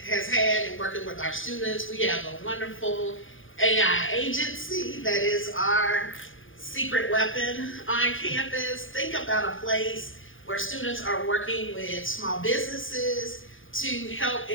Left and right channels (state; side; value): late; right; 0.58 ms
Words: had in working with our students. We have a wonderful AI agency that is our secret weapon on campus. Think about a place where students are working with small businesses to help